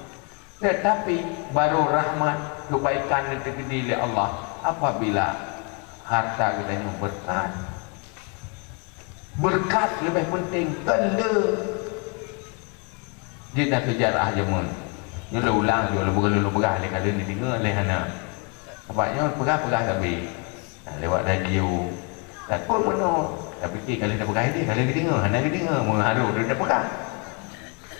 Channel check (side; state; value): right; quieter; 32.9 dB